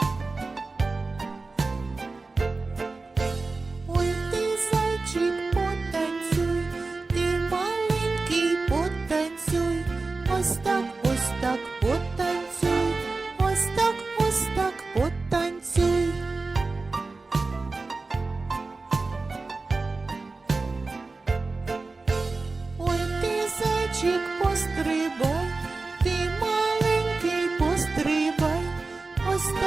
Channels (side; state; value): left; quieter; 3.7 dB